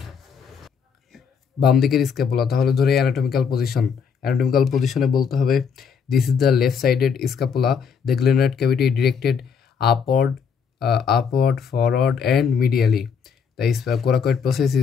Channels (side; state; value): right; quieter; 6.5 dB